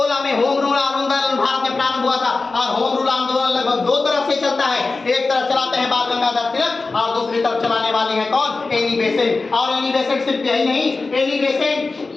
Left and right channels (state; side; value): quieter; right; 3.8 dB